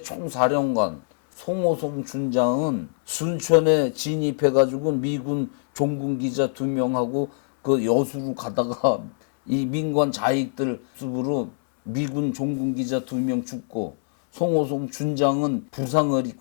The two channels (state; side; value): silent; right; digital silence